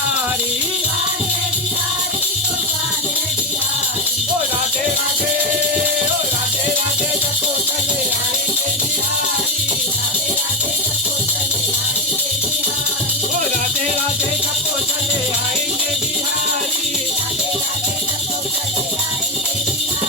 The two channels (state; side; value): normal; both; correlation 0.13